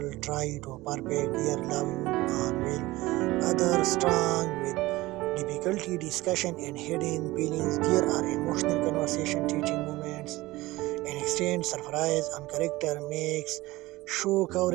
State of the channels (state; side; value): quieter; left; 19.2 dB